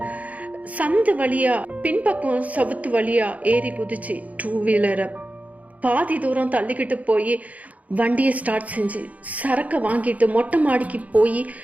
சந்து வழியா பின்பக்கம் சவுத்து வழியா ஏறி குதிச்சு 2 வீலரை பாதி தூரம் தள்ளிக்கிட்டு போய் வண்டியை ஸ்டார்ட் செஞ்சு சரக்கை வாங்கிட்டு மொட்டை மாடிக்கு போய்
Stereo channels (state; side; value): late; left; 0.071 ms